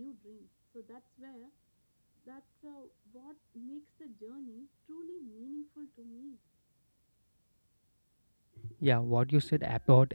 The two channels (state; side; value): inverted; both; correlation -1.00